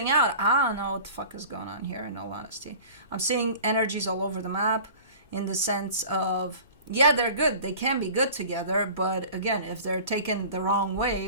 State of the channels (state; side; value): inverted; both; correlation -0.42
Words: out. I don't know what the fuck is going on here, in all honesty. I'm seeing energies all over the map in the sense of, yeah, they're good. They can be good together. But again, if they're taken the wrong way,